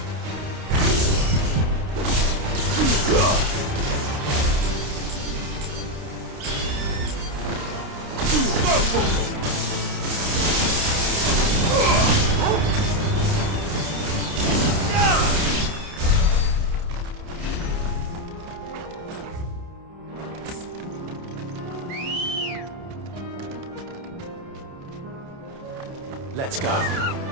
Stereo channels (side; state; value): left; late; 29 ms